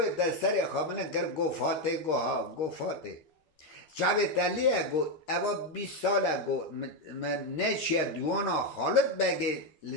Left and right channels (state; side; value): late; right; 13 ms